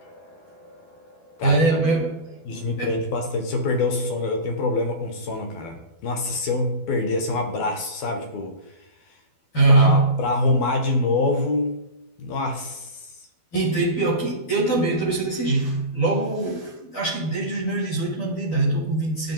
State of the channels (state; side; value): late; right; 12 ms